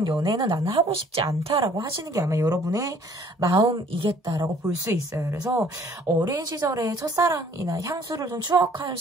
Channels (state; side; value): normal; both; correlation 0.57